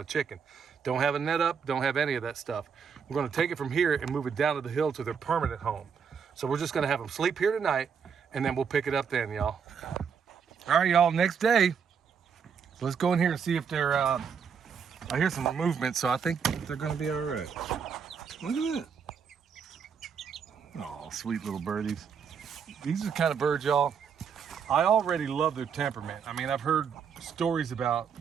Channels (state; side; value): quieter; left; 6.7 dB